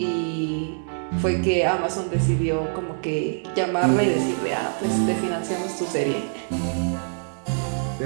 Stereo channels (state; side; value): silent; left; 59 dB below the other